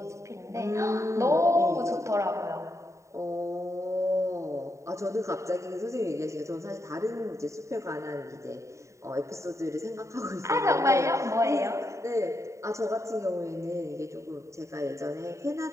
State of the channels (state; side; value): late; left; 0.14 ms